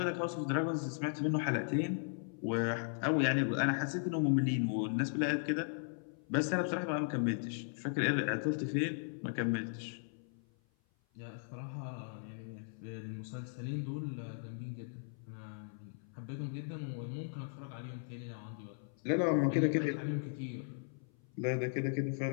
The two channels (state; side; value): silent; right; 53 dB below the other